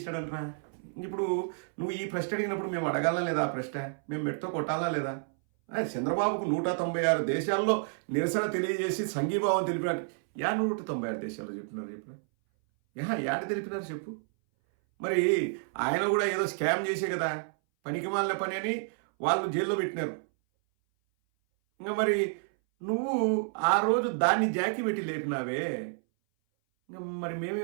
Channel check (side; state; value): left; silent; 58 dB below the other